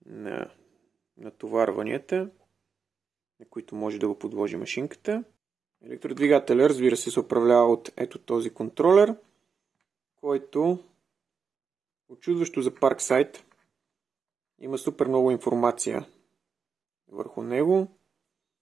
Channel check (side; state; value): left; quieter; 5.9 dB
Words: на натоварванията, на които може да го подложи машинката. Електродвигателя, разбира се управлява от ето този контролер, който очудващо за Parkside има супер много информация върху него.